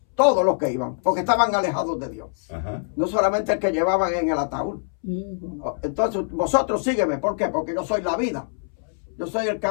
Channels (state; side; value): silent; right; 63 dB below the other